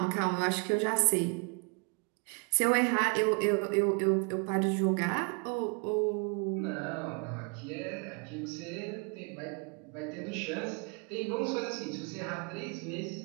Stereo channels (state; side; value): quieter; left; 35.5 dB